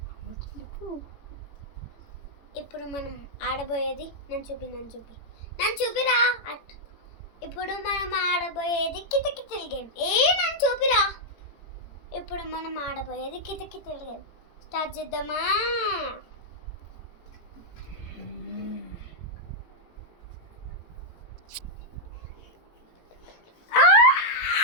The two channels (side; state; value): right; late; 18 ms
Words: ఇప్పుడు మనం ఆడబోయేది నన్ను చూపిరా. ఇప్పుడు మనం ఆడబోయేది కితకితల గేమ్. నన్ను చూపిరా. ఇప్పుడు మనం ఆడబోయేది కితకితల గేమ్. స్టార్ట్ చేద్దామా?